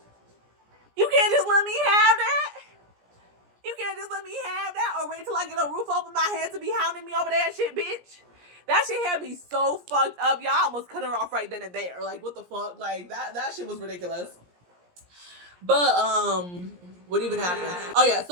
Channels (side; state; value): left; late; 17 ms